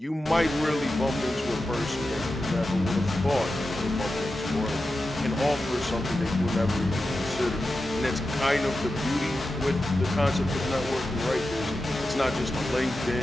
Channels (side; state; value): both; normal; correlation 0.91